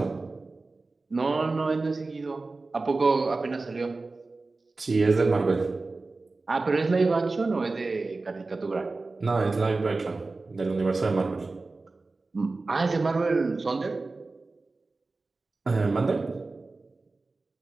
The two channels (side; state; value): left; quieter; 3.6 dB